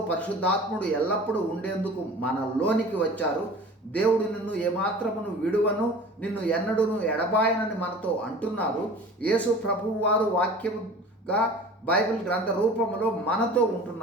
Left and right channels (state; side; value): normal; both; correlation 0.41